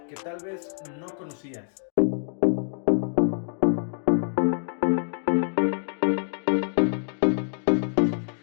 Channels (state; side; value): silent; right; digital silence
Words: que tal vez no conocías.